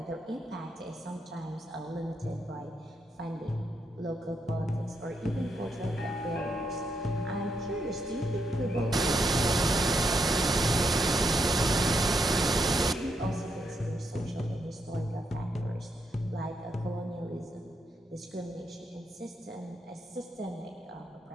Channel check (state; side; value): normal; both; correlation 0.79